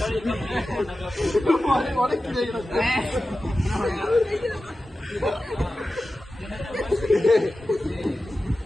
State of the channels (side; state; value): both; normal; correlation 0.94